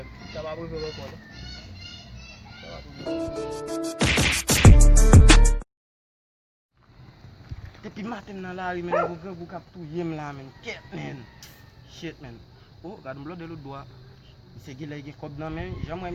Ça va arriver encore. Ça va arriver. Depuis matin dans la rue, vous captez là, man. Ket, man. Shit, man. Oh, regarde, je de l'autre doigt. C'est qu'il a un code dans la main. J'aimerais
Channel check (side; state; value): both; identical; correlation 1.00